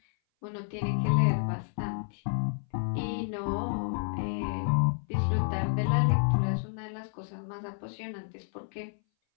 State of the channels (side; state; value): right; silent; 58 dB below the other